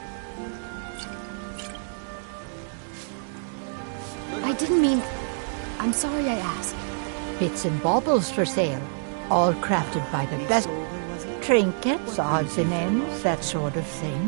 didn't mean... I'm sorry I asked. Bits and baubles for sale, all crafted by the best. Trinkets, odds and ends, that sort of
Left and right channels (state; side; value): silent; left; digital silence